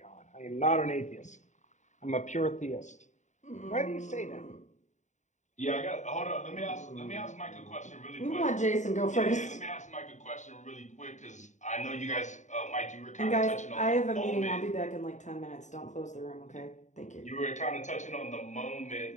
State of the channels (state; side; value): late; right; 0.35 ms